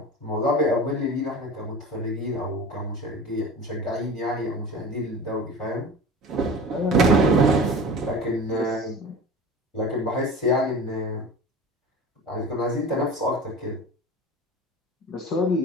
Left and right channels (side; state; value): both; normal; correlation 0.34